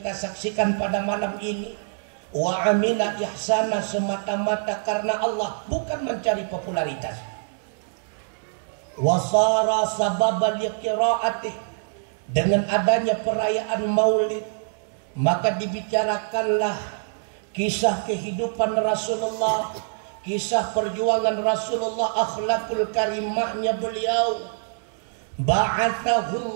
saksikan pada malam ini, wa amila ihsana, semata-mata karena Allah, bukan mencari popularitas, wasara sababal qiraatih, dengan adanya perayaan Maulid maka dibicarakanlah kisah kehidupan Rasulullah, kisah perjuangan Rasulullah, akhlakul karimahnya beliau.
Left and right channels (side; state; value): left; silent; digital silence